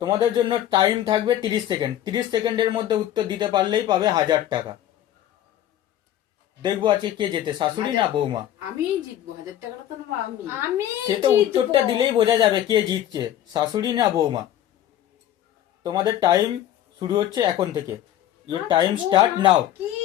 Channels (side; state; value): right; quieter; 11.9 dB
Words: তোমাদের জন্য টাইম থাকবে 30 সেকেন্ড। 30 সেকেন্ডের মধ্যে উত্তর দিতে পারলেই পাবে 1000 টাকা। দেখবো আজকে কে জেতে, শাশুড়ি না বৌমা। আমি জিতবো, 1000 টাকাটা তো নেবো আমি। আমি সে তো উত্তরটা দিলেই বোঝা যাবে কে জিতছে, শাশুড়ি না বৌমা। তোমাদের টাইম শুরু হচ্ছে এখন থেকে। Your time start now. কি